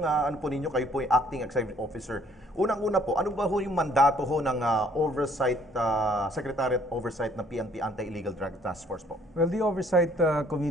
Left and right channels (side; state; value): both; normal; correlation 0.61